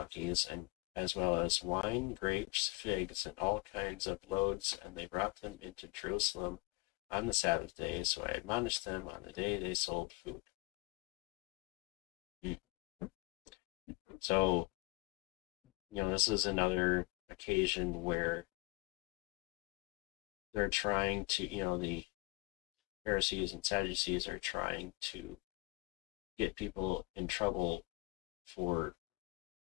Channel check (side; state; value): right; quieter; 23.6 dB